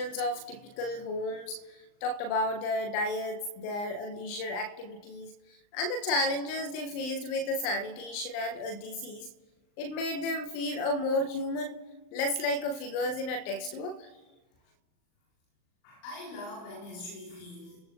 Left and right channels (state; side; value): late; right; 39 ms